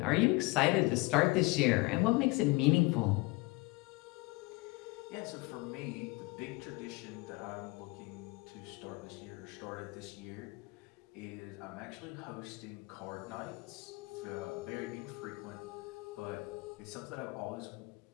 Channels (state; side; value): quieter; right; 24.4 dB